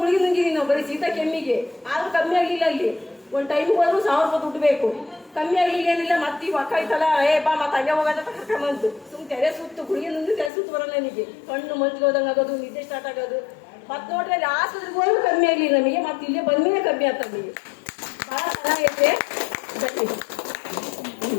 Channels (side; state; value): right; drops out; at 10.5 s